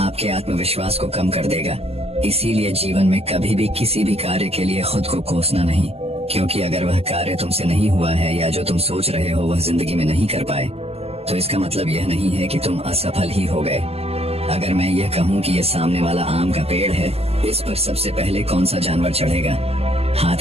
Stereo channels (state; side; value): late; left; 0.29 ms